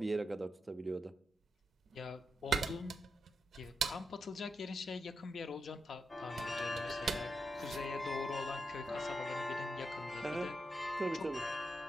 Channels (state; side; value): normal; both; correlation 0.85